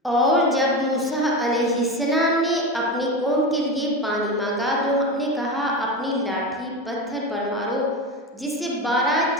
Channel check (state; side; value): normal; both; correlation 0.22